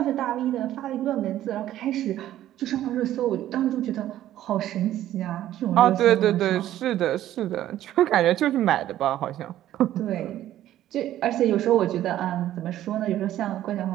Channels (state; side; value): quieter; left; 12.9 dB